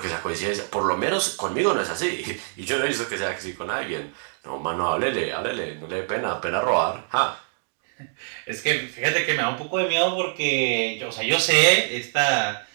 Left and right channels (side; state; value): left; silent; digital silence